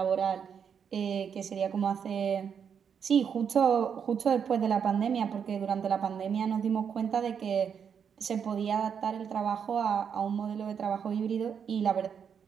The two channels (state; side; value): quieter; left; 7.3 dB